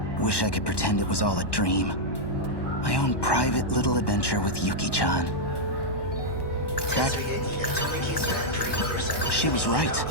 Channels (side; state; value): right; late; 1.1 ms